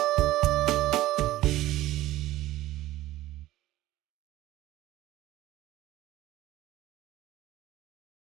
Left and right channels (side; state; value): left; quieter; 15.6 dB